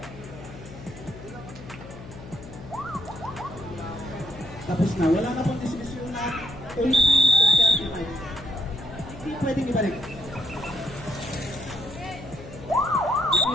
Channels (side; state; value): left; noise; hum, 14 dB below the sound